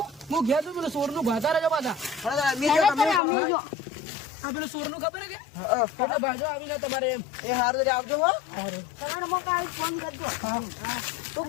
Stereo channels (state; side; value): drops out; right; at 3.2 s